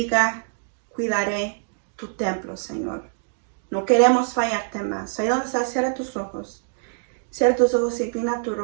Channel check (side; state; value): left; silent; digital silence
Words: cuidaré tu templo, Señor. No queremos fallarte más. Ahí donde estás, cierra tus ojos. Cierra tus ojos y inclina tu